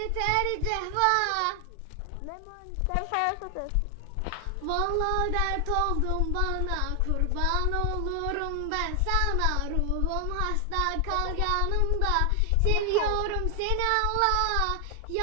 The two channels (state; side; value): different; both; correlation 0.00